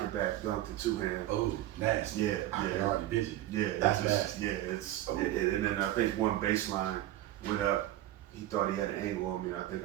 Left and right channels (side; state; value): left; quieter; 14.2 dB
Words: it back, dunked it 2-hand. Oh, nasty. Yeah, I yeah. already busy. Yeah, That's it's just, nasty. yeah, and then I think one baseline went up. He thought he had an angle on me, and I think